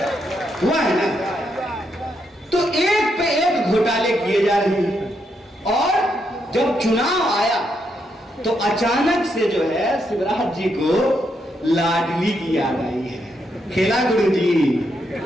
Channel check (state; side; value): normal; both; correlation 0.79